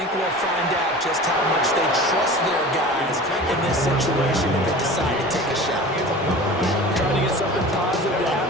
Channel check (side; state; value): both; normal; correlation 0.37